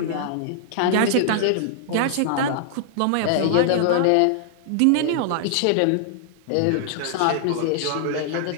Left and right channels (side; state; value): both; different; correlation -0.01